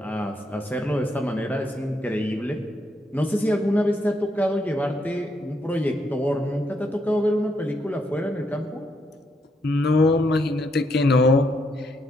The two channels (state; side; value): normal; both; correlation 0.77